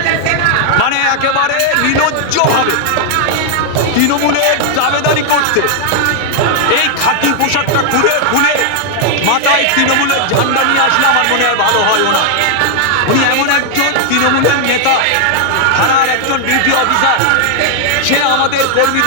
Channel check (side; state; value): both; different; correlation 0.00